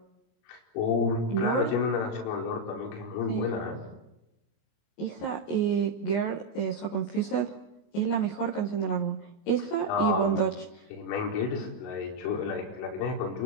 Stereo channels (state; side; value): late; right; 25 ms